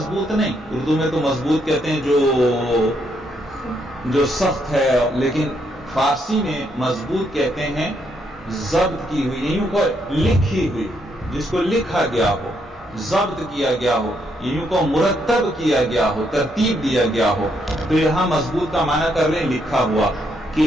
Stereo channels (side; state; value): both; normal; correlation 0.75